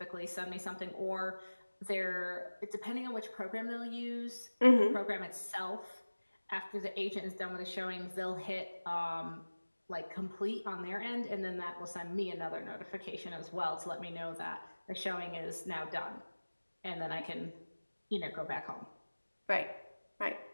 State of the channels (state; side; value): inverted; both; correlation -1.00